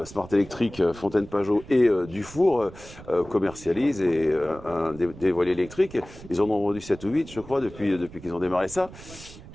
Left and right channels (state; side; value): noise; right; rumble, 17 dB below the sound